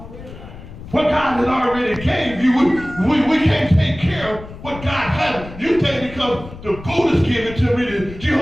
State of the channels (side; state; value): left; noise; rumble, 15 dB below the sound